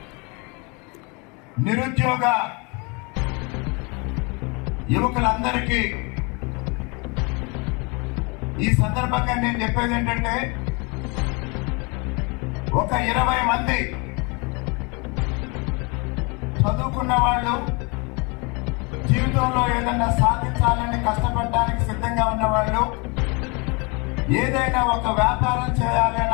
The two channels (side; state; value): right; quieter; 30.0 dB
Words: నిరుద్యోగ యువకులందరికీ ఈ సందర్భంగా నేను చెప్పేది ఏంటంటే, ఒక 20 మంది చదువుకున్న వాళ్ళు, జీవితంలో ఏదైనా సాధించాలని కష్టపడడానికి సిద్ధంగా ఉన్న వాళ్ళు, ఏదైనా ఒక వ్యాపారం చేయాలి